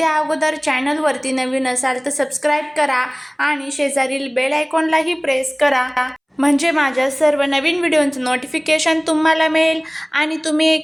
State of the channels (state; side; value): identical; both; correlation 1.00